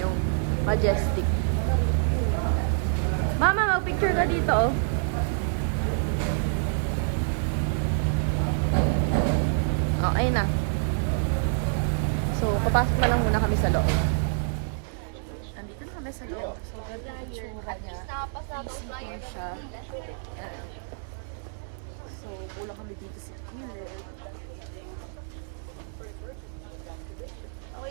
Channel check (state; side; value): silent; left; digital silence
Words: Majestic. Mama, mag-picture ka dito, oh. Oh, ayun na. So, papasok na lang muna kami sa loob. Nandito na kami sa loob. So, ganito yung itsura niya. Isipin siya. Ayan. So, pula kami dito sa gilid.